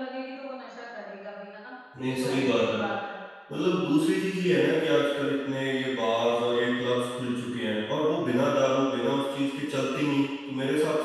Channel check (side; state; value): both; identical; correlation 1.00